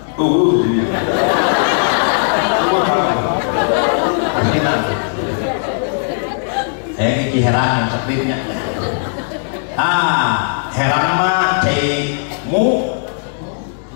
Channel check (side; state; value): right; silent; 68 dB below the other